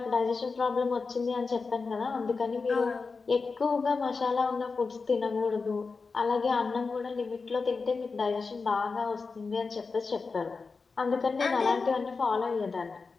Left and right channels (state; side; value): quieter; right; 4.5 dB